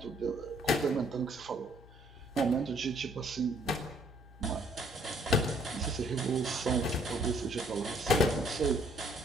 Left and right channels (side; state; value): both; normal; correlation 0.64